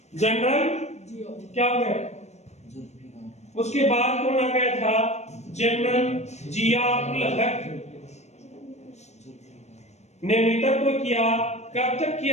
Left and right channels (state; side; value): late; right; 0.32 ms